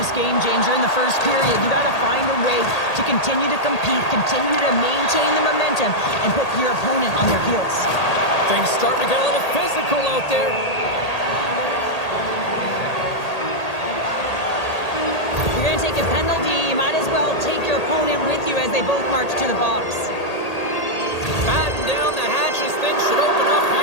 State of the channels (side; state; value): right; late; 1.8 ms